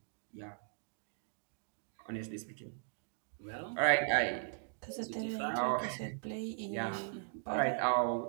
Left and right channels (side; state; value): left; silent; digital silence